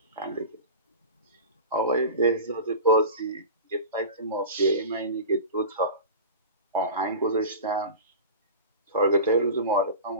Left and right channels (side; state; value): both; inverted; correlation -0.31